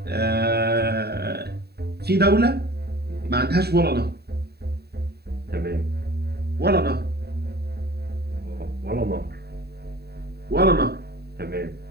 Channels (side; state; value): left; late; 0.47 ms